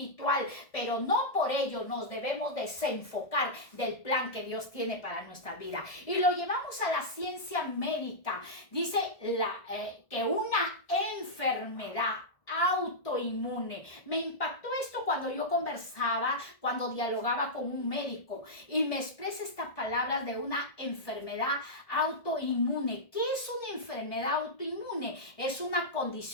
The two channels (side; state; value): right; late; 1.7 ms